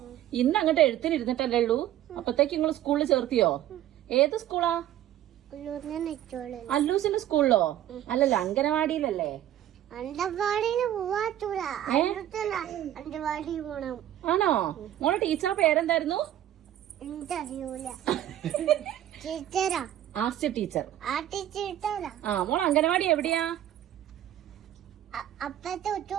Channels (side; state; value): left; quieter; 12.3 dB